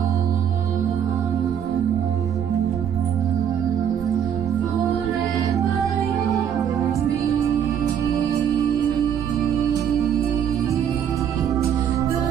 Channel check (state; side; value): quieter; left; 8.7 dB